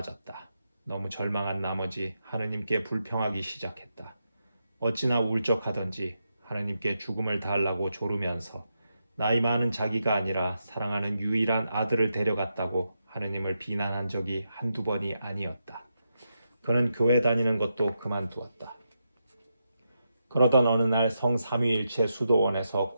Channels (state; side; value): inverted; both; correlation -0.85